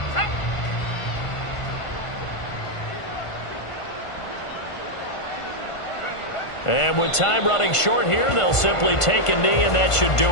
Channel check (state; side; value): late; right; 1.5 ms